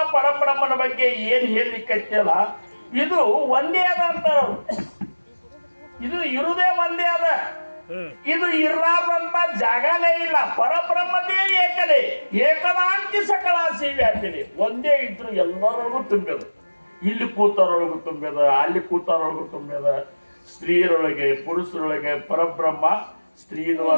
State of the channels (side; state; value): both; inverted; correlation -1.00